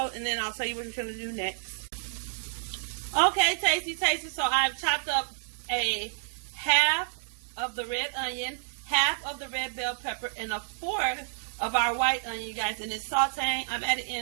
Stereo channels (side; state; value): left; silent; digital silence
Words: and then I'll tell you what we're going to do next. Okay, tasty. So I've chopped up a half of the red onion, half of the red bell pepper, and a fourth of our white onion, you guys. And it's sauteing. I'm adding